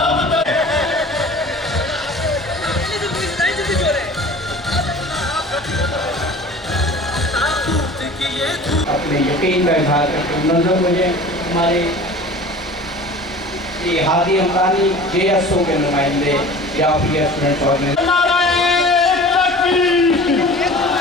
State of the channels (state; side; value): normal; both; correlation 0.42